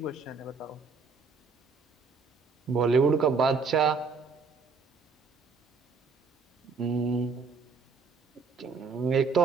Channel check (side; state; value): left; quieter; 4.9 dB